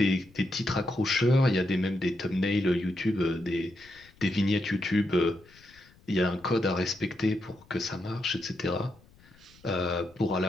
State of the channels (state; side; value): noise; left; rumble, 27 dB below the sound